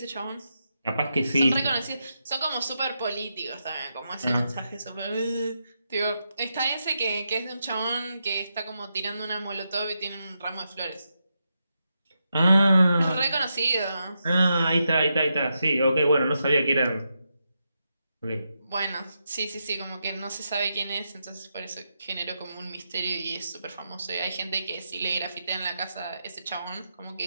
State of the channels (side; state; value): both; inverted; correlation -0.85